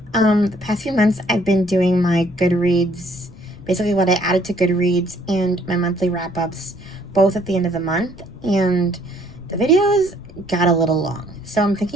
The past few months I've been doing my Goodreads, basically what I added to Goodreads, and my monthly wrap-ups both at the end of the month, and the videos got a little long. So I'm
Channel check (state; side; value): noise; left; rumble, 20 dB below the sound